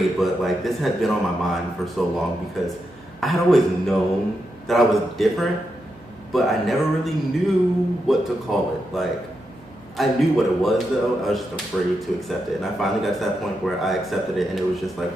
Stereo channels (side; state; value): right; noise; hum, 28 dB below the sound